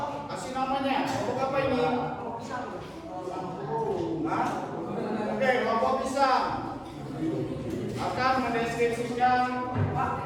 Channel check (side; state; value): both; identical; correlation 1.00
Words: kasih namanya. Kelompok apa ini? Nah, oke, kelompok pisang akan mendeskripsikan